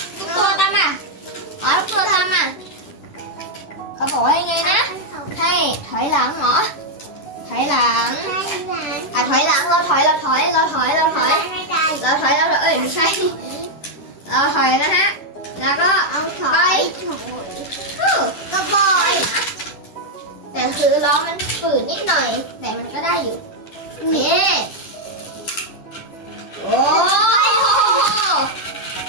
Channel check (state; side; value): late; right; 10 ms